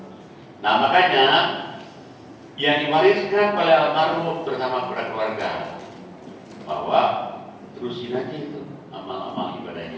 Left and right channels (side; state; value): both; identical; correlation 1.00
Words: Nah makanya yang diwariskan oleh almarhum bersama para keluarga bahwa terusin aja itu amal-amal